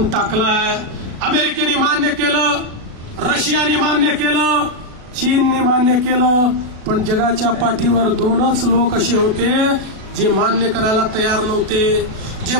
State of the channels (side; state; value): left; late; 36 ms